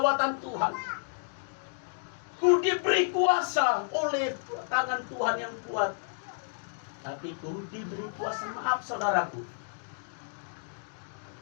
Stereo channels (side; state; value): right; silent; digital silence